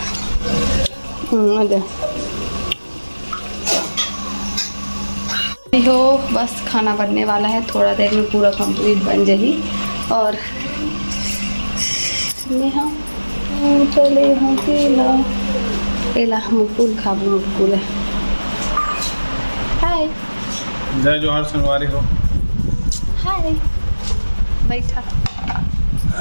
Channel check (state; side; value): inverted; both; correlation -1.00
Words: अरे संगवारी हो, बस खाना बनने वाला है, थोड़ा देर में पूरा कंप्लीट बन जाएगी। और नेहा चले हाँ केला केला मुकुल खाबू मुकुल है। हाय जय जोहार संगवारी हो। हाय बैठा